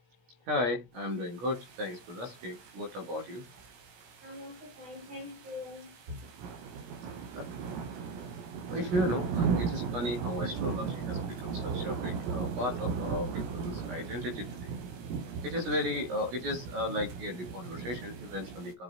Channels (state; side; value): late; left; 17 ms